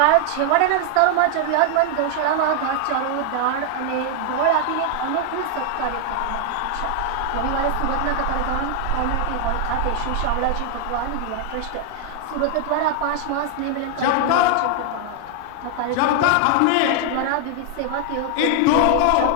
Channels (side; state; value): both; different; correlation 0.00